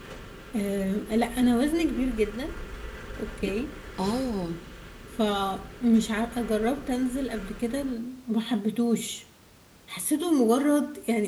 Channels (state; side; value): identical; both; correlation 1.00